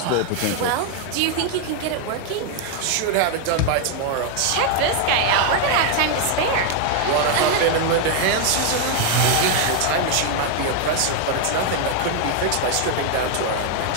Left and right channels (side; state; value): both; different; correlation 0.01